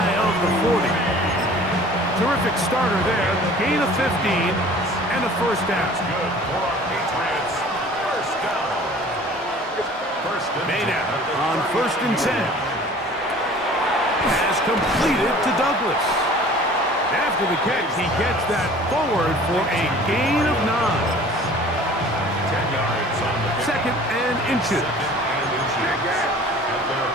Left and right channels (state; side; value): normal; both; correlation 0.47